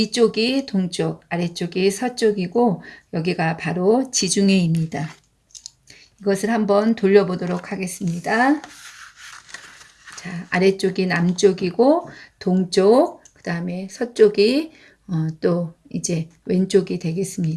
동쪽, 아래쪽이 서쪽이고 여기가 바로 지중해입니다. 이것을 한번 돌려보도록 하겠습니다. 자, 아래쪽이 남쪽이고 동쪽, 그 다음에 서쪽이 또 이제 왼쪽이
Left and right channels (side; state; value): both; identical; correlation 1.00